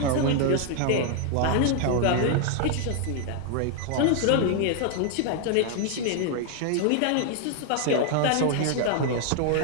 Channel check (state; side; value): different; both; correlation 0.00